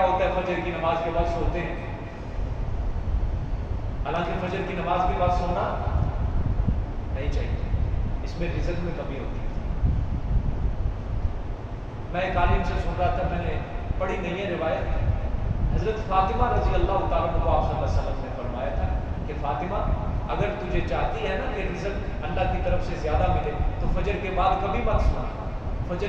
ہوتا ہے، فجر کی نماز کے بعد سوتے ہیں، حالانکہ فجر کی نماز کے بعد سونا نہیں چاہیے، اس میں رزق میں کمی ہوتی ہے۔ میں ایک عالم سے سن رہا تھا، میں نے پڑھی نہیں ہے روایت، حضرت فاطمہ رضی اللہ تعالیٰ عنہ کو آپ صلی اللہ علیہ وسلم نے فرمایا تھا کہ فاطمہ اگر تجھے چاہتی ہے نا کہ رزق اللہ کی طرف سے زیادہ ملے تو فجر کے بعد کبھی مت سونا،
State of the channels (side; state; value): both; identical; correlation 1.00